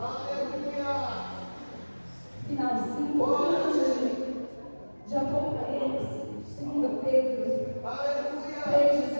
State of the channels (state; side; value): inverted; both; correlation -1.00